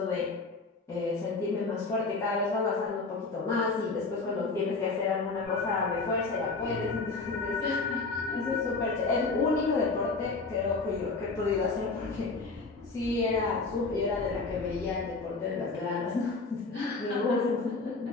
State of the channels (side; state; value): right; quieter; 3.9 dB